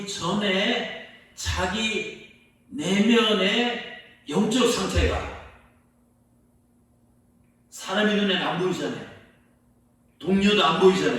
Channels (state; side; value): identical; both; correlation 1.00